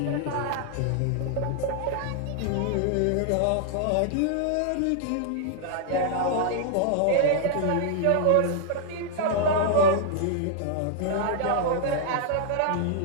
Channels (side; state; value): both; different; correlation -0.01